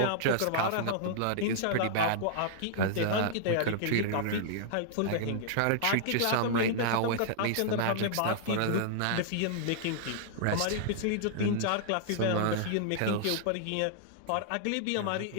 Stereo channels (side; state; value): both; different; correlation -0.01